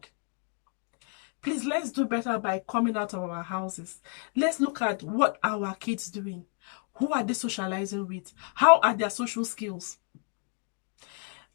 Please, let's do better by coming out of our houses. Let's look at what our kids doing. Who are they socializing with? How are their social skills?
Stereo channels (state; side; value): quieter; right; 39.3 dB